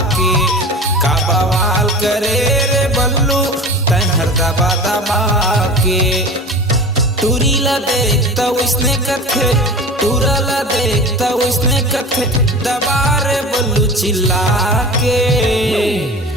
के, का बवाल करे रे बल्लू तहर दबा दबा के। टूरी ला देखता उसने कथे, टूरा ला देखता उसने कथे, दबा रे बल्लू चिल्ला के।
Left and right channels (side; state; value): both; normal; correlation 0.35